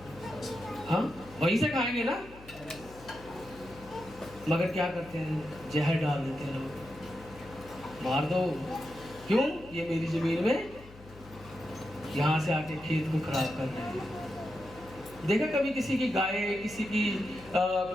हाँ वहीं से खाएंगे ना, मगर क्या करते हैं? जहर डाल देते हैं लोग, मार दो। क्यों? ये मेरी जमीन में यहाँ से आके खेत को खराब कर रहे हैं। देखा कभी किसी की गाय, किसी की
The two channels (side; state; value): left; noise; hum, 19 dB below the sound